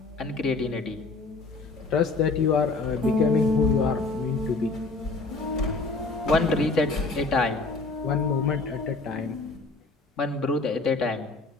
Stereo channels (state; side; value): quieter; right; 3.7 dB